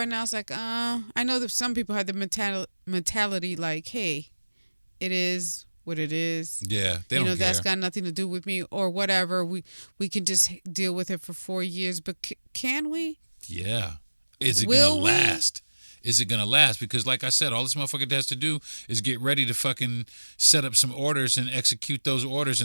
now, it's like, I know that some people have the mentality like, hey, it is what it is. Yeah, they don't care. That's got nothing to do with me or whatever. We can just deal with it for 4 years. But can we? Yeah. Is it going to last? Is it going to last? Because like I said, all this motherfucker has to do is get ready to fucking set up some orders and execute those orders.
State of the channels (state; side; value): inverted; both; correlation -1.00